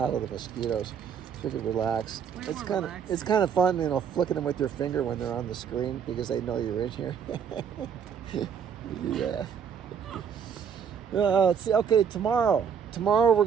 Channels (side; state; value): left; quieter; 7.4 dB